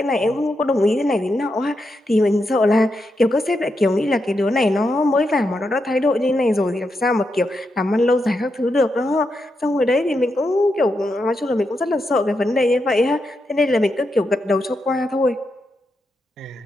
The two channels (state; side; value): normal; both; correlation 0.85